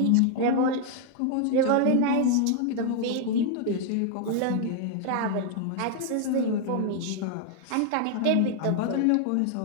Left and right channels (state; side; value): different; both; correlation 0.00